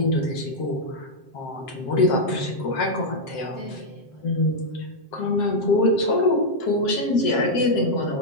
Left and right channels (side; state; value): right; late; 7.6 ms